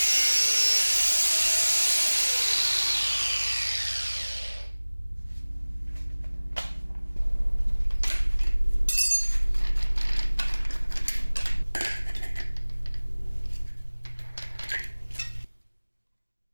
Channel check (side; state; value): both; inverted; correlation -1.00